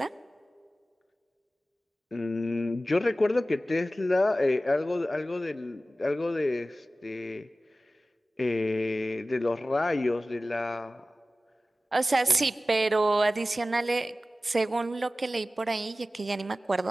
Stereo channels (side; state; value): both; normal; correlation 0.96